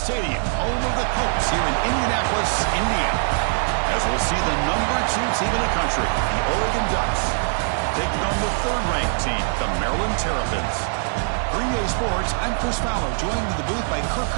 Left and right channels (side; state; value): left; silent; 60 dB below the other